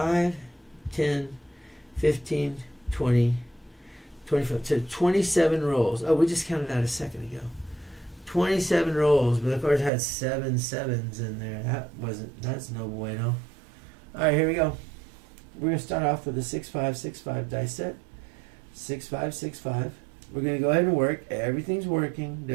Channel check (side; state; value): left; drops out; at 9.9 s